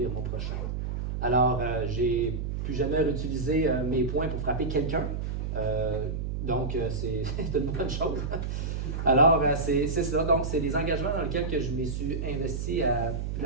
mon prochain. Alors, j'ai plus jamais réutilisé mes poings pour frapper quelqu'un. Donc, c'est une bonne chose. Alors, c'est ça. Donc, c'est des engagements dans lesquels que je me suis investi à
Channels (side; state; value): right; noise; hum, 3 dB below the sound